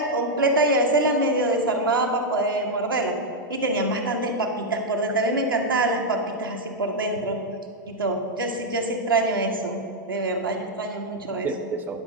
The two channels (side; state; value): both; normal; correlation -0.02